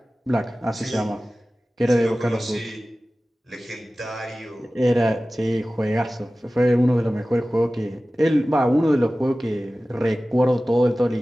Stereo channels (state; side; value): normal; both; correlation 0.96